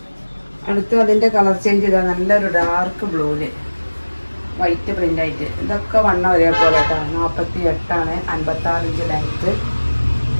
അടുത്ത് അതിൻ്റെ കളർ ചേഞ്ച് ചെയ്താൽ നല്ലൊരു ഡാർക്ക് ബ്ലൂവില് വൈറ്റ് പ്രിന്റ് ആയിട്ട്. ഇതൊക്കെ വണ്ണം ഒരേപോലെ കേട്ടോ. 48 56 ഇഞ്ച് ലെങ്ത്ത്.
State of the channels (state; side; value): inverted; both; correlation -1.00